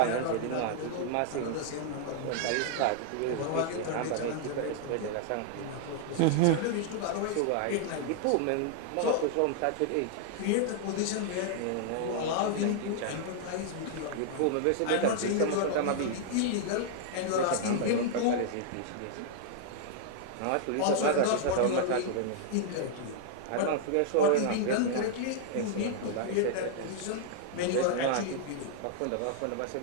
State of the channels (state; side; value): different; both; correlation 0.00